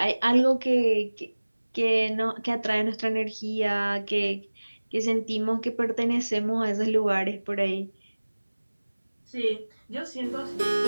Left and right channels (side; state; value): both; inverted; correlation -1.00